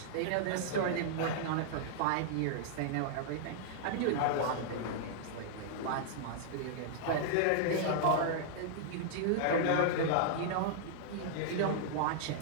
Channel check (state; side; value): different; both; correlation -0.01